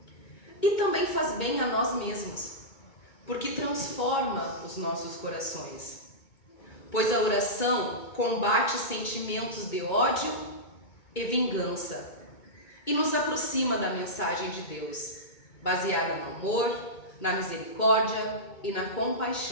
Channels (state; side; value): late; right; 2.2 ms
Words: E também faz bem a nós mesmos, porque transforma os nossos corações. Pois a oração combate sentimentos de ódio e vingança e nos aproxima da mensagem de Deus, baseada no amor, na misericórdia e na